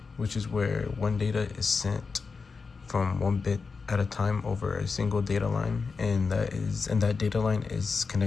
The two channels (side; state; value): right; quieter; 4.8 dB